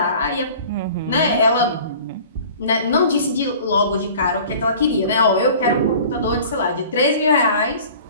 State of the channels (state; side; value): inverted; both; correlation -0.45